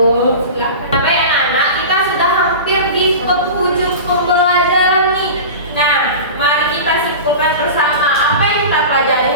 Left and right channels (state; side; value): inverted; both; correlation -0.31